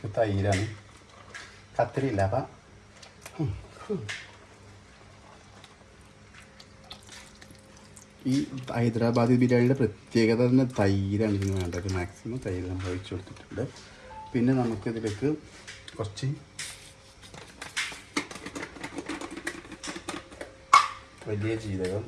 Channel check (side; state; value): both; identical; correlation 1.00